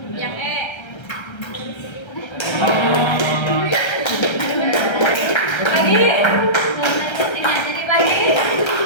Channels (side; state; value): right; late; 1.3 ms